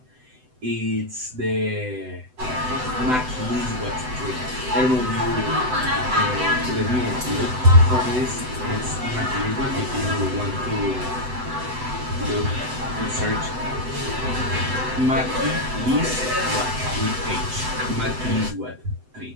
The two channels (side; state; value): left; late; 7.9 ms